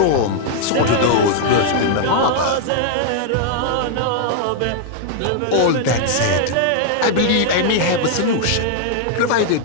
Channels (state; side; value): different; both; correlation 0.00